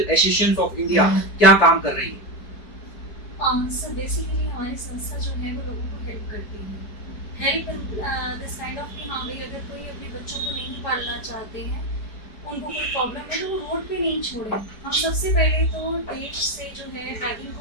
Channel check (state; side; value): late; right; 4.7 ms